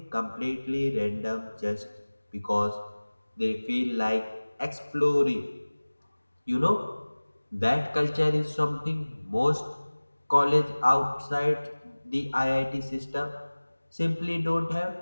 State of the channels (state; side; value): inverted; both; correlation -1.00